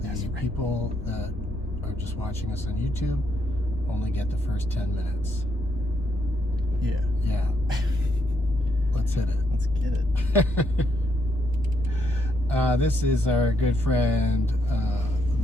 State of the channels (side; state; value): both; normal; correlation 0.76